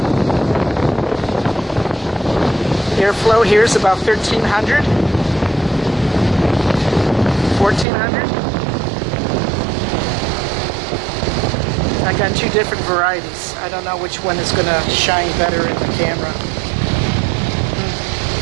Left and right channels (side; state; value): left; drops out; at 7.9 s